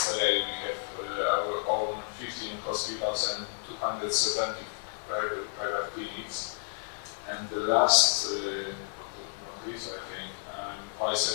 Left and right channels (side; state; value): right; silent; 57 dB below the other